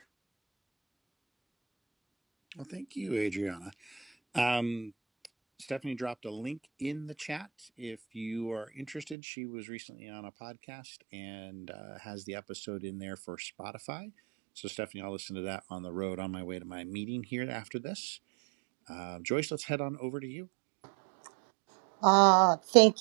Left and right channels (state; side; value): drops out; left; at 9.2 s